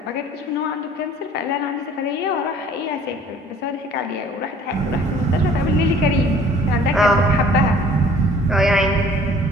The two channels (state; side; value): normal; both; correlation 0.53